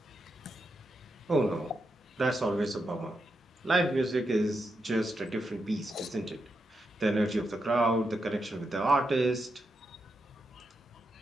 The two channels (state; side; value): normal; both; correlation 0.85